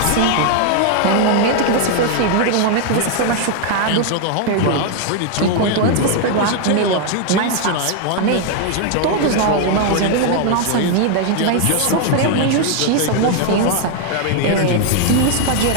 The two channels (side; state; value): both; different; correlation 0.00